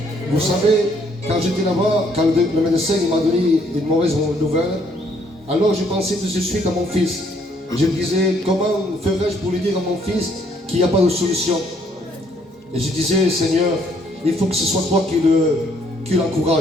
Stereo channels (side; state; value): both; normal; correlation 0.66